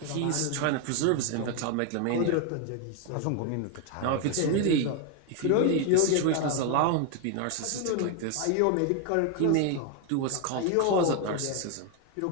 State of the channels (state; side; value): different; both; correlation 0.01